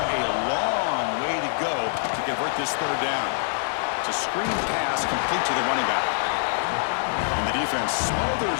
a long way to go to convert this third down. It's a screen pass complete to the running back. And the defense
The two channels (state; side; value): silent; right; digital silence